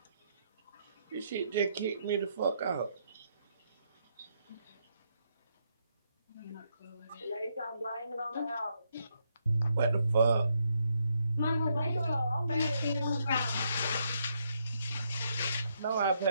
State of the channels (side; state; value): both; inverted; correlation -0.77